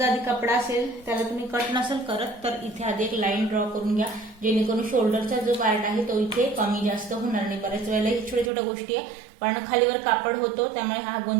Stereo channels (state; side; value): drops out; left; at 8.5 s